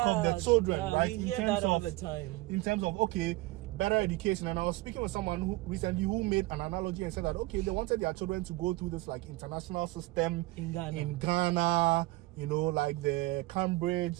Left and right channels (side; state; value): left; quieter; 20.2 dB